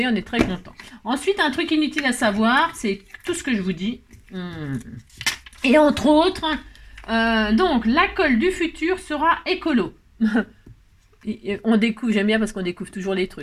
on est très content. Ensuite, un truc inutile à savoir, c'est tout ce que je vous dis. Et entre autres, donc, la colle du futur sera écolo. On découvre, j'aime bien parce qu'on découvre toujours les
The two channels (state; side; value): identical; both; correlation 1.00